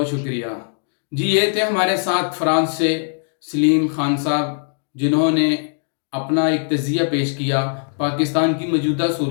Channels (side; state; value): right; silent; digital silence